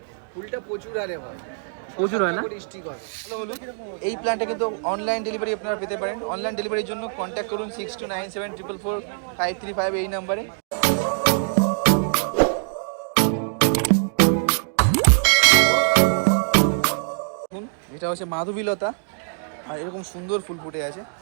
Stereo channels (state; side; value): silent; left; 63 dB below the other